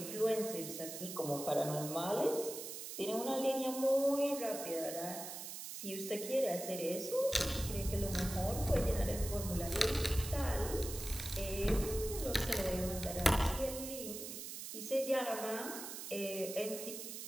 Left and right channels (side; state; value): right; noise; hiss, 8 dB below the sound